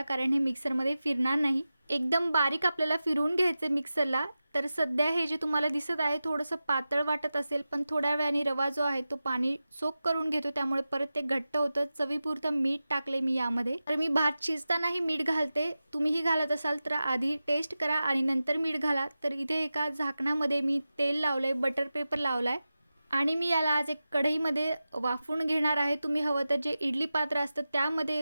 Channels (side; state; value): both; inverted; correlation -0.94